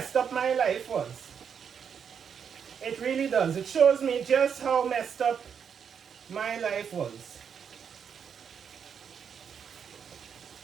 up my life was. It really does. It shows me just how messed up my life was.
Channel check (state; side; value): quieter; left; 7.2 dB